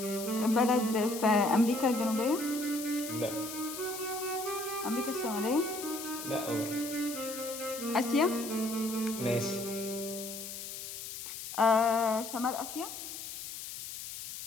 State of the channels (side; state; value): left; noise; hiss, 9 dB below the sound